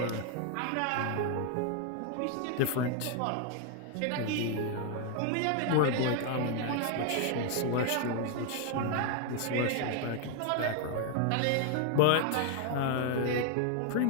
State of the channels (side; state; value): both; different; correlation 0.00